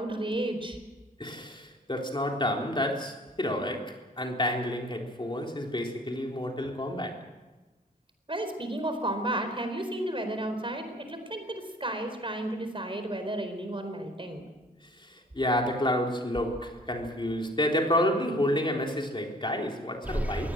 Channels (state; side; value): normal; both; correlation 0.53